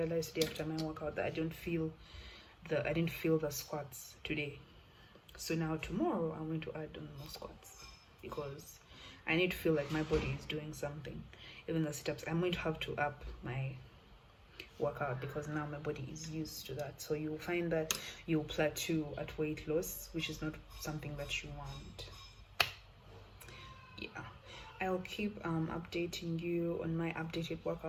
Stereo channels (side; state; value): both; identical; correlation 1.00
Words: today after my workout, that I didn't feel the squats today. So now tomorrow I'm going to add on more squats because I need to feel like my body is doing something. Even the sit-ups, I'm going to have to up my workout because now my body is used to that. So you'll find that you'll plateau at weight loss, which is not something that you want. Yeah, I'll keep updating you on my updated